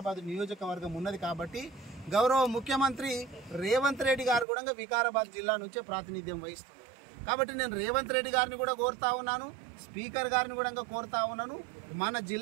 నియోజకవర్గం ఉన్నది. కాబట్టి గౌరవ ముఖ్యమంత్రి రేవంత్ రెడ్డి గారు కూడా వికారాబాద్ జిల్లా నుంచే ప్రాతినిధ్యం వహిస్తున్నారు. కాబట్టి నేను రేవంత్ రెడ్డి గారిని కూడా కోరుతా ఉన్నాను, స్పీకర్ గారిని కూడా కోరుతా ఉన్నాను, మన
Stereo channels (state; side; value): drops out; left; at 4.5 s